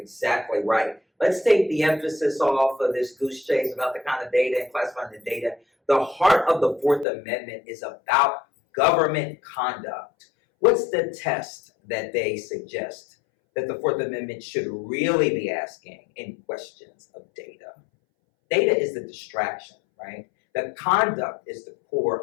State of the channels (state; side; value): drops out; right; at 7.1 s